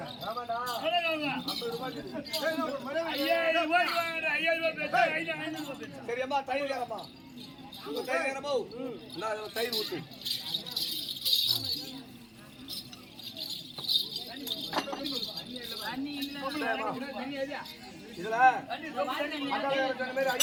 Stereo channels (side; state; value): both; identical; correlation 1.00